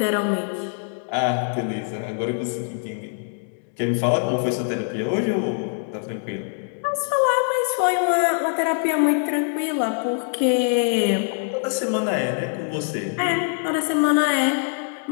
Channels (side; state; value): right; silent; 63 dB below the other